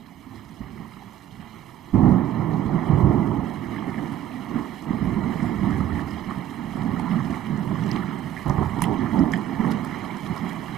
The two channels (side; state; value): left; quieter; 11.5 dB